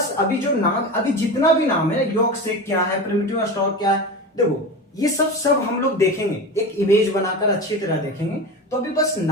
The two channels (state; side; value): normal; both; correlation 0.27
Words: अभी जो नाम, अभी जितना भी नाम है, यॉर्कशेयर क्या है, प्रिमिटिव स्टॉक क्या है, देखो ये सब हम लोग देखेंगे, एक इमेज बनाकर अच्छी तरह देखेंगे। तो अभी बस